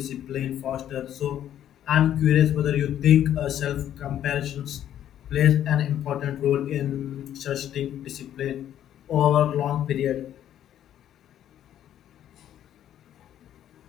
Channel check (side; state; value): right; quieter; 11.0 dB